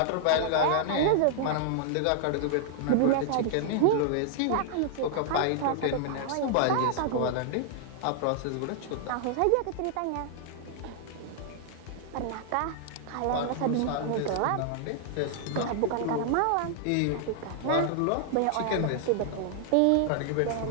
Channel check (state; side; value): different; both; correlation -0.01